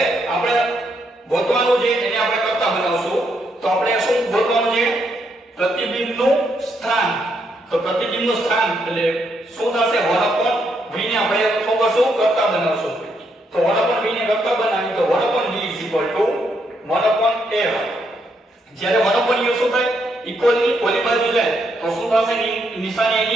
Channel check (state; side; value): normal; both; correlation 0.77